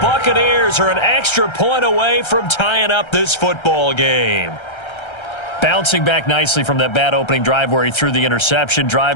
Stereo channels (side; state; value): right; late; 1.3 ms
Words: Buccaneers are an extra point away from tying up this football game. Bouncing back nicely from that bad opening drive where he threw the interception.